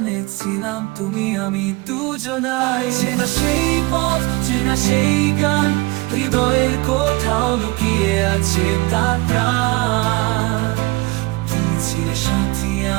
ছিলাম তুমি আমি দুজনাই, চেনা সেই পথ, চেনা সেই গান, হৃদয়ের কোথাও লুকিয়ে আছে তার প্রাণ। তুমি ছিলে সাথী,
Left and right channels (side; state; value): left; quieter; 23.7 dB